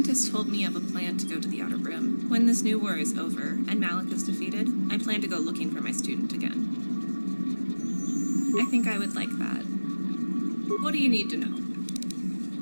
told me of a plan to go to the Outer Rim. When this new war is over, and Malak is defeated, I plan to go looking for my student again. I think I would like that. What do you need to know?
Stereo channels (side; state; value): both; inverted; correlation -1.00